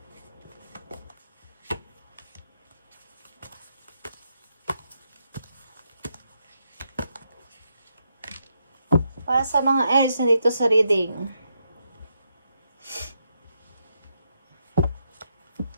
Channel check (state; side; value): inverted; both; correlation -0.81